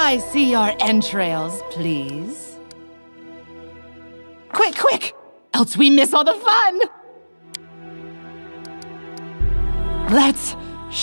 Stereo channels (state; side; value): inverted; both; correlation -1.00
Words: I see your entrails, please? Quick, quick! Else we miss all the fun! Let's